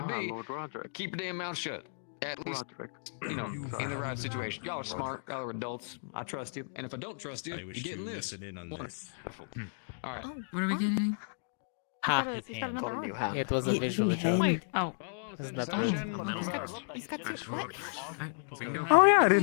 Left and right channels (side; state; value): right; silent; digital silence